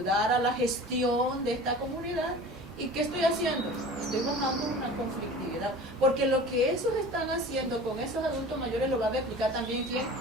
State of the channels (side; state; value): both; normal; correlation 0.39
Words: a la gestión de esta comunidad. ¿Y qué estoy haciendo? Estoy bajando una conflictividad, porque lo que esos están haciendo con esos adultos mayores lo va a replicar también ¿quién?